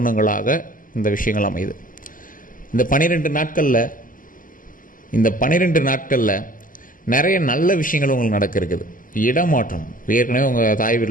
இந்த விஷயங்கள் அமையுது. இந்த 12 நாட்களில் நிறைய நல்ல விஷயங்கள் உங்களுக்கு நடக்க இருக்குது. இடமாற்றம், ஏற்கனவே உங்கள் தாய்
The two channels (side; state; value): right; late; 0.39 ms